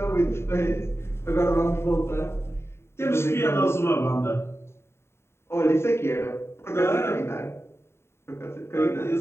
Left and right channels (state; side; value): late; right; 0.12 ms